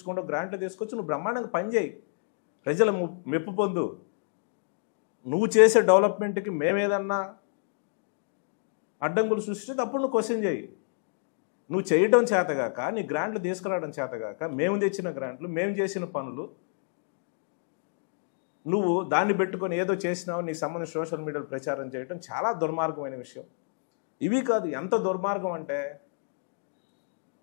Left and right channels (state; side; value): silent; right; digital silence